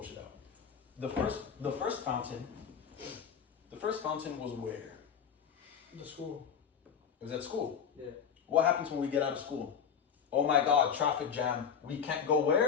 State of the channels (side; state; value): right; quieter; 7.5 dB